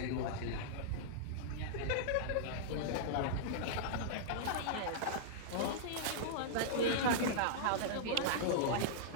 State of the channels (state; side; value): different; both; correlation -0.02